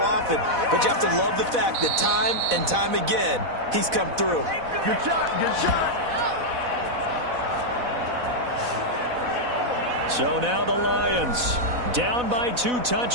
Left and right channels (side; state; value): left; late; 4.1 ms